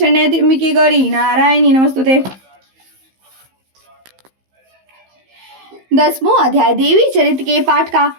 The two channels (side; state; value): left; late; 15 ms